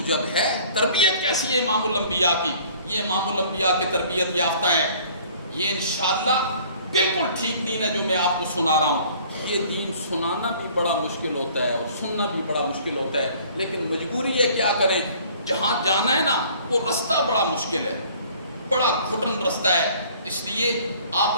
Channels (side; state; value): both; inverted; correlation -0.53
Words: ہے، تربیت کیسی ہے امام الانبیاء کی؟ یہ امام الانبیاء کے تربیت یافتہ ہے۔ یہ انشاءاللہ بالکل ٹھیک دین ہے جو میں آپ کو سنا رہا ہوں۔ یہ دین سنانا بھی بڑا مشکل ہوتا ہے اور سننا بھی بڑا مشکل ہوتا ہے، لیکن مجبوری ہے، کیا کریں؟ جہاں جانا ہے نا وہ رستہ بڑا مشکل ہے، بڑا گھٹن رستہ ہے۔ اس لیے آپ